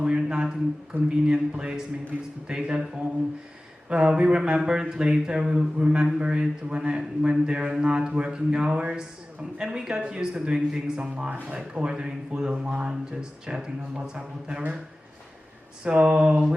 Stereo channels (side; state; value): both; normal; correlation 0.97